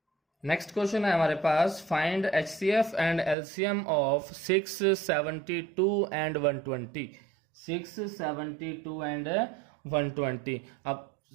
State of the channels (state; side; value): drops out; left; at 3.4 s